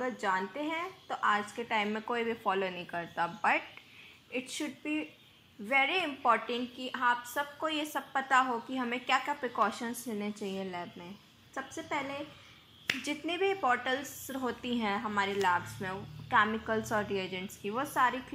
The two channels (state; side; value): identical; both; correlation 1.00